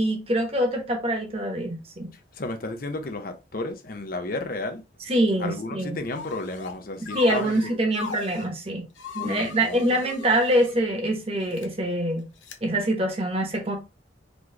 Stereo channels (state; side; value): normal; both; correlation 0.49